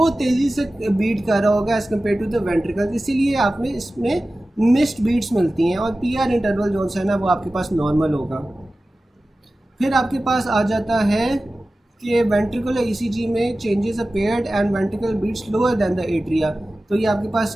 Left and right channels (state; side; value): normal; both; correlation 0.96